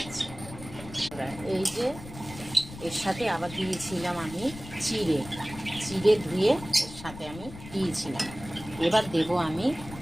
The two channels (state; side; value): noise; left; rumble, 14 dB below the sound